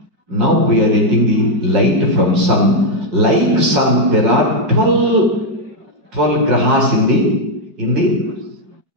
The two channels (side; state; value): left; late; 5.5 ms